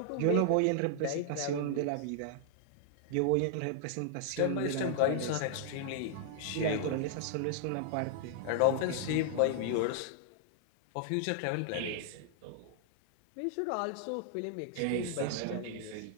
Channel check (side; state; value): both; different; correlation -0.01